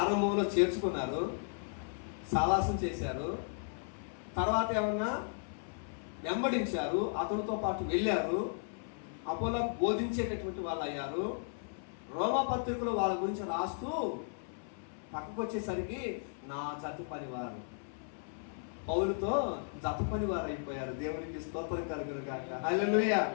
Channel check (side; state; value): right; silent; 54 dB below the other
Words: చేర్చుకున్నారు, సావాసం చేశారు, తర్వాత ఏమన్నా వెంబడించారు, అతనితో పాటు వెళ్ళారు, అపోలోకు బోధించేటటువంటి వాళ్ళు అయ్యారు. రోమా పత్రికలో వాళ్ళ గురించి రాస్తూ పక్కకు వచ్చేసరికి నా జత పనివారు, పౌలుతో జత పనివారు అయిపోయారు. దేవునికి స్తోత్రం కలుగును గాక. హల్లెలూయా.